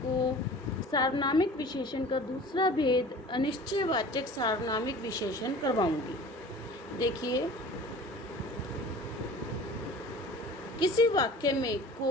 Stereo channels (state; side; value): normal; both; correlation 0.42